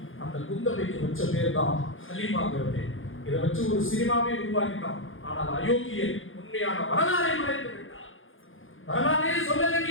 அந்த குந்தவைக்கு வச்ச பேர் தான் ஹலீமாங்கிறது. இதை வச்சு ஒரு சினிமாவே உருவாக்கிட்டான். ஆனால் அயோக்கியன் உண்மையான வரலாறை மறைத்து விட்டார். வரலாறே சொல்லல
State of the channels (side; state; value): right; late; 0.58 ms